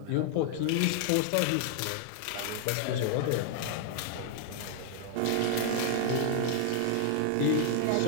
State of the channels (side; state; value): both; different; correlation 0.00